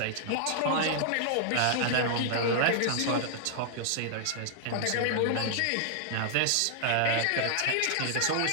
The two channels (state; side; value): different; both; correlation -0.01